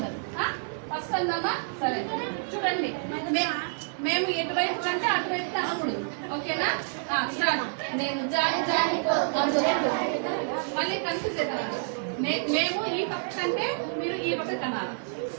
ఫస్ట్ అన్నామా? సరే చూడండి, మేము ఎటువైపు కంటే అటువైపు కనకూడదు, ఓకేనా? స్టార్ట్. నేను జారి జారిపోకుండా మళ్ళీ కన్ఫ్యూజ్ అవుతాను. మేము ఈ పక్క కంటే మీరు ఈ పక్క కనాలి,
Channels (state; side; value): silent; left; digital silence